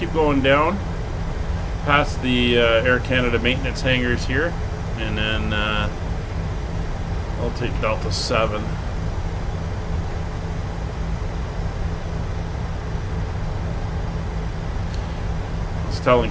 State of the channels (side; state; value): both; identical; correlation 1.00